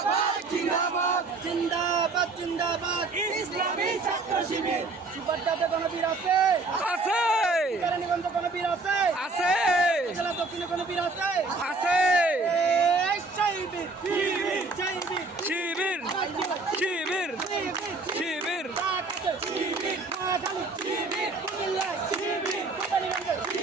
জিন্দাবাদ জিন্দাবাদ জিন্দাবাদ ইসলামী ছাত্র শিবির সুপারদাতে গণবীর আছে আছে কেরানীগঞ্জ গণবীর আছে আছে জেলা দক্ষিণে গণবীর আছে আছে শিবির শিবির শিবির শিবির শিবির শিবির শিবির কুমিল্লা শিবির কেরানীগঞ্জ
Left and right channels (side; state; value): left; quieter; 3.6 dB